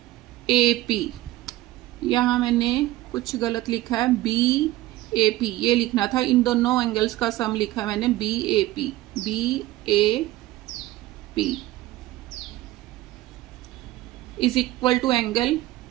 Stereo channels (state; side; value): quieter; left; 16.7 dB